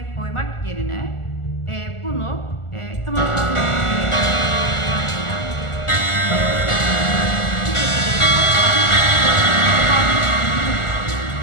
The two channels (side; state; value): right; late; 1.4 ms